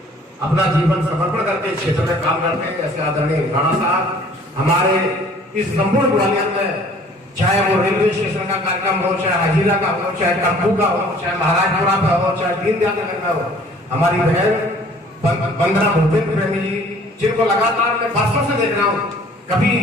अपना जीवन समर्पण करके इस क्षेत्र में काम करते हैं। ऐसे आदरणीय राणा साहब हमारे इस संपूर्ण ग्वालियर में, चाहे वो रेलवे स्टेशन का कार्यक्रम हो, चाहे हजीरा का हो, चाहे टप्पू का हो, चाहे महाराजपुरा का हो, चाहे दीनदयाल नगर का हो, हमारी बहन वंदना भूपेंद्र प्रेमी जी, जिनको लगातार मैं वर्षों से देख रहा हूँ, कभी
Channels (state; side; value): normal; both; correlation 0.54